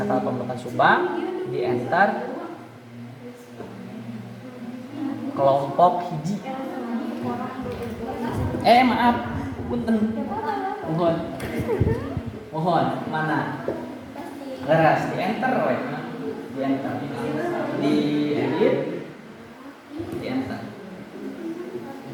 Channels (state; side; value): identical; both; correlation 1.00